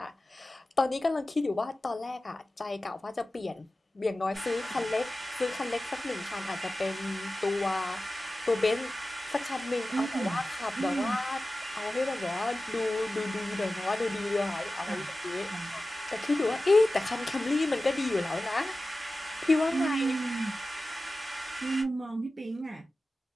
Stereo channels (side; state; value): both; normal; correlation 0.95